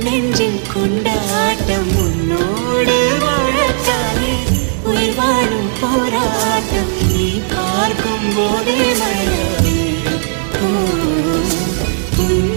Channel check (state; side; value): silent; left; digital silence